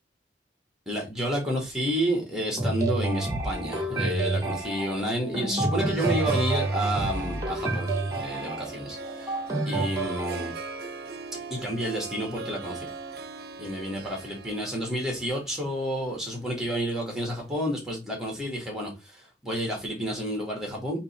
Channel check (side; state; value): both; normal; correlation 0.55